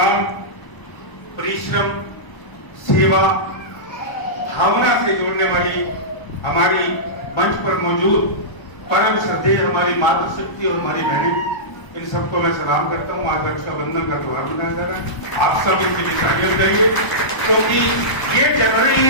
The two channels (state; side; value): late; right; 1.0 ms